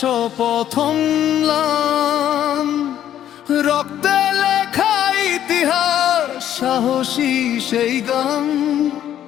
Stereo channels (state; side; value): quieter; right; 11.0 dB